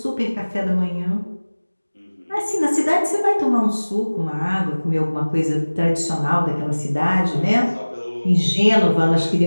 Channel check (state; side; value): inverted; both; correlation -1.00